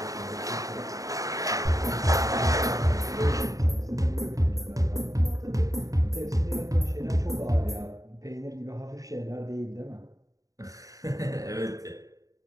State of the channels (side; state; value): left; late; 0.16 ms